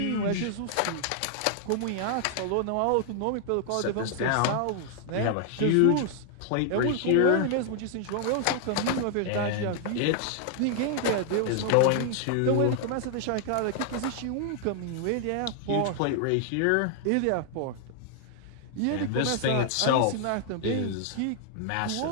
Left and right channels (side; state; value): both; different; correlation 0.00